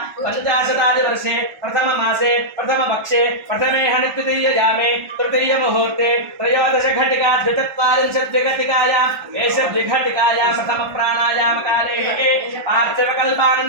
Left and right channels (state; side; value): late; left; 1.3 ms